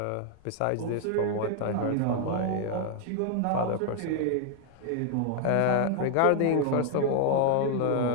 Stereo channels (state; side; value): different; both; correlation 0.00